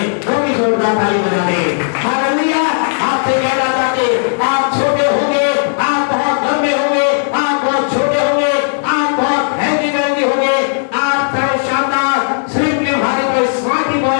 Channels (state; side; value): silent; right; digital silence